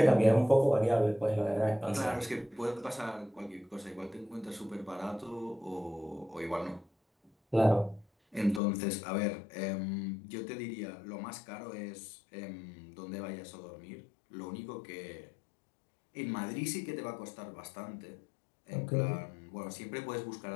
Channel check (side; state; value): right; drops out; at 8.6 s